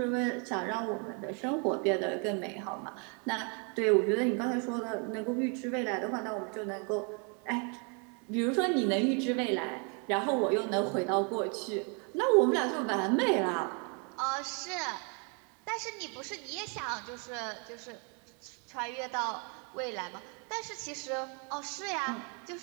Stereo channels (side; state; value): left; quieter; 36.6 dB